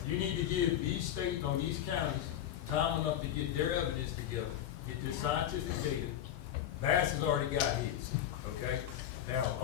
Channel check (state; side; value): quieter; right; 11.0 dB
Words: You need to give these states or these counties time enough to get their evidence together, get their scientific data. Bass has already got his, okay? Now,